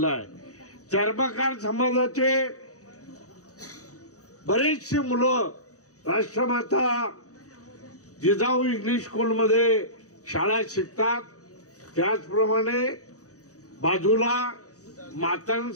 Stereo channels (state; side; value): late; right; 0.66 ms